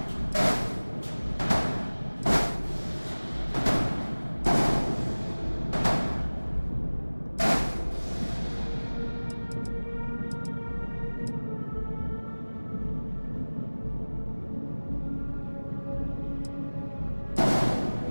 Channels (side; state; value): both; inverted; correlation -1.00